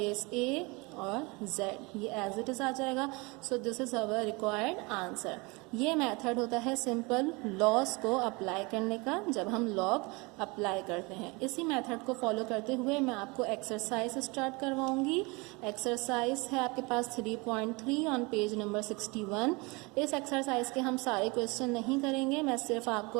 a और z, ये एज इट इज आ जाएगा। सो this is our required answer. ये मेथड होता है सिंपल लॉस को अप्लाई करने का, जब हम लॉग अप्लाई करते हैं। इसी मेथड को फॉलो करते हुए मैं आपको एक्सरसाइज स्टार्ट करवाऊंगी। एक्सरसाइज है आपके पास 3.3 ऑन पेज नंबर 61। इस एक्सरसाइज के हम सारे क्वेश्चन नहीं करेंगे, मैं सिर्फ आपको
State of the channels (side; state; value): left; quieter; 26.7 dB